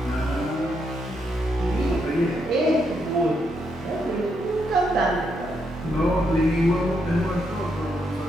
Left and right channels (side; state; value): both; normal; correlation 0.79